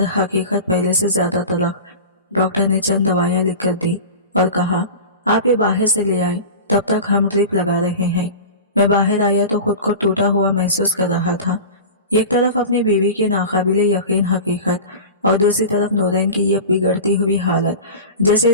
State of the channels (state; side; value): inverted; both; correlation -0.32